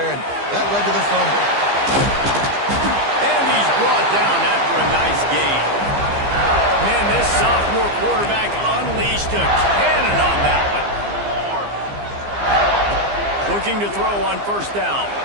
and that led to the fumble. And he's brought down after a nice gain. Man, this sophomore quarterback unleashed a cannon on that one. Looking to throw on first down.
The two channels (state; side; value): late; left; 15 ms